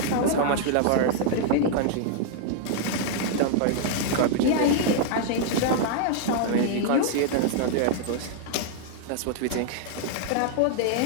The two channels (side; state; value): both; different; correlation -0.01